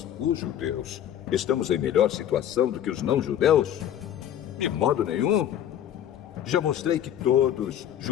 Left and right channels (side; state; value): right; quieter; 10.6 dB